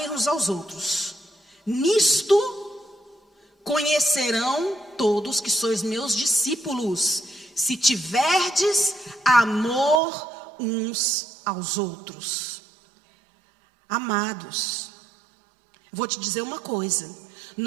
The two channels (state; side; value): drops out; left; at 10.0 s